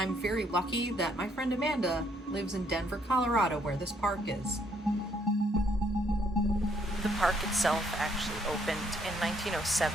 very lucky that my friend Amanda lives in Denver, Colorado, where this park is. The park itself actually opened in 1907,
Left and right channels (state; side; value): normal; both; correlation 0.69